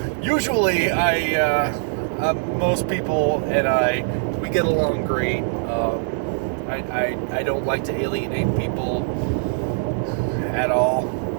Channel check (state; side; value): silent; left; digital silence